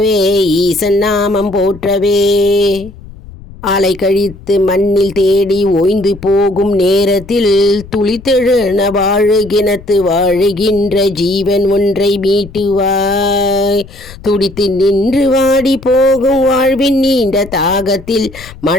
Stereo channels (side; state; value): left; noise; rumble, 18 dB below the sound